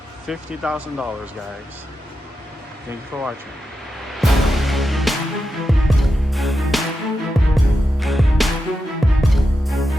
$50,000, guys. Thank you for watching.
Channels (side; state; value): both; normal; correlation 0.89